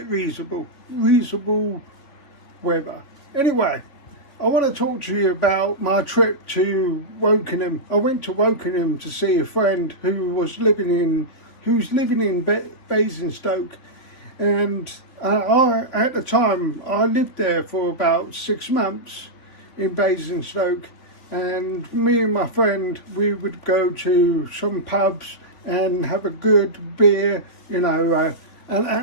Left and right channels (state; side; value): late; right; 3.6 ms